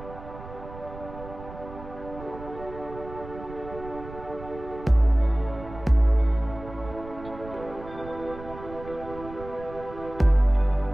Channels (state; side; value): noise; right; rumble, 14 dB below the sound